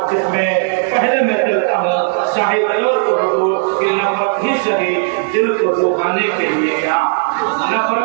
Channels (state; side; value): silent; left; 60 dB below the other